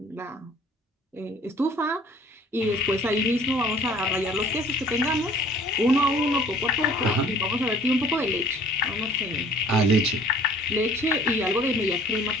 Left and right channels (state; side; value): normal; both; correlation 0.52